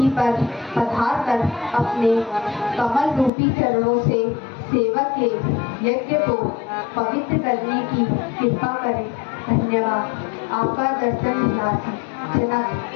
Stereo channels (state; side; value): drops out; right; at 3.3 s